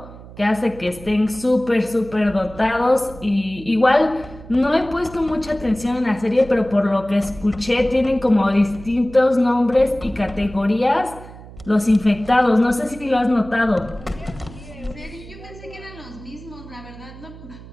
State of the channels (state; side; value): noise; right; hum, 17 dB below the sound